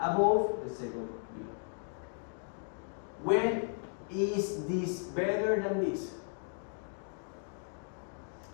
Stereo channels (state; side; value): silent; right; 54 dB below the other